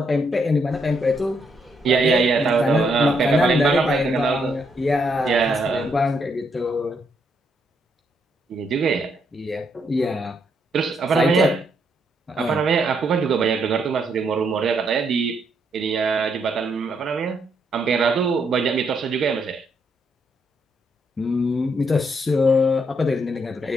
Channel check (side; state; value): both; normal; correlation 0.76